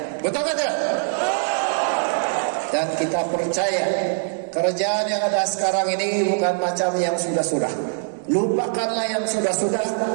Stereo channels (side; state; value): left; silent; 59 dB below the other